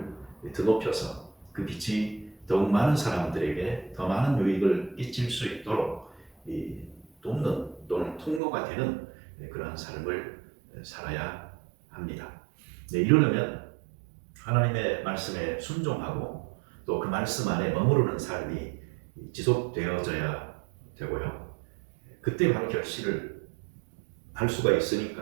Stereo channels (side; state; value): left; drops out; at 8.4 s